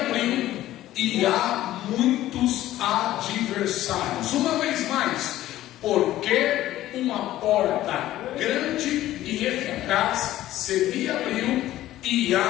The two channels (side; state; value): right; quieter; 14.4 dB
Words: e há muitos adversários. Uma vez mais, porque uma porta grande e eficaz se me abriu e